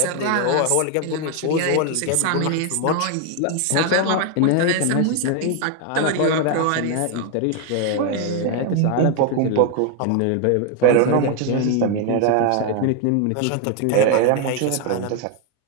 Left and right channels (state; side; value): different; both; correlation 0.01